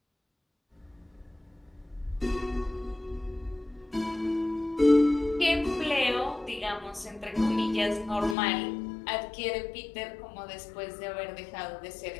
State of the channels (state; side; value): drops out; right; at 8.3 s